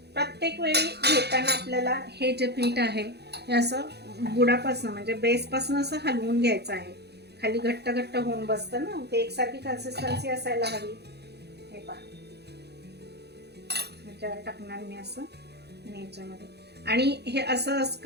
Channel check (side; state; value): left; late; 0.48 ms